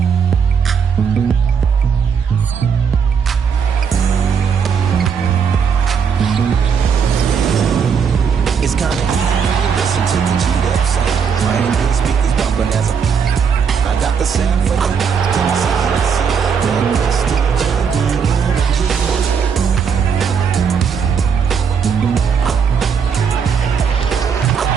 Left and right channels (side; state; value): left; quieter; 6.6 dB